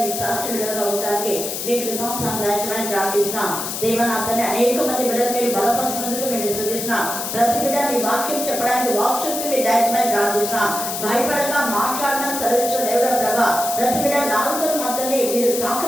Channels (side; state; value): left; noise; hiss, 5 dB below the sound